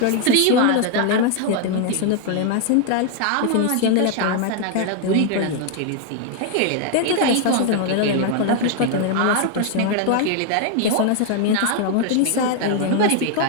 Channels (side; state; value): both; different; correlation 0.01